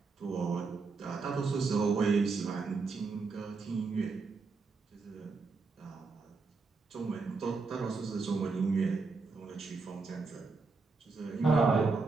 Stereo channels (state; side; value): quieter; left; 4.3 dB